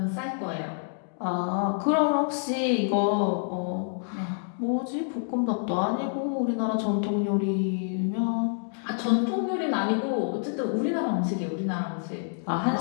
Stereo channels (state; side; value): silent; right; digital silence